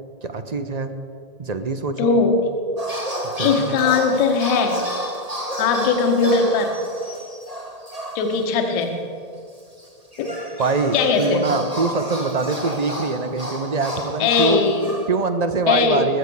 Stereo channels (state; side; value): late; left; 1.8 ms